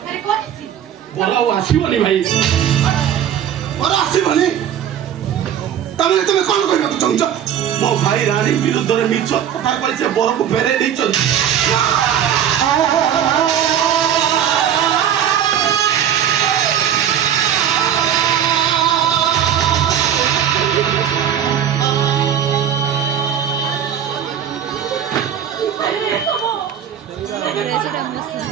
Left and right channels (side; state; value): left; quieter; 9.6 dB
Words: বড় ଆଉ ଆସିବନି ଭାଇ। ଘର ଆସିବନି? ତମେ ତମେ କଣ କରିବାକୁ ଚାହୁଁଛ? ମୋ ଭାଇ ରାଣୀ ବିରୁଦ୍ଧରେ ମିଛ କଥା କହି ସେ ବରକୁ ଫେରେଇ ଦେଇଛନ୍ତି।